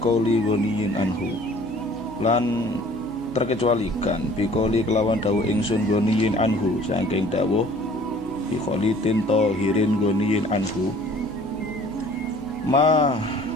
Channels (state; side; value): noise; right; hum, 19 dB below the sound